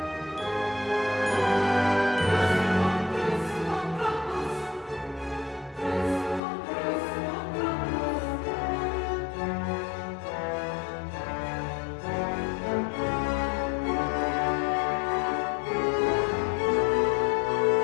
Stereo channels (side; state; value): right; drops out; at 6.4 s